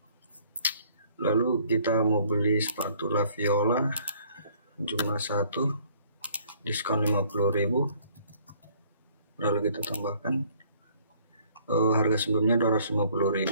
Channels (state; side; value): inverted; both; correlation -0.59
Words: Lalu kita mau beli sepatu La Viola jumlah 1, diskon 50.000. Lalu kita tambahkan harga sebelumnya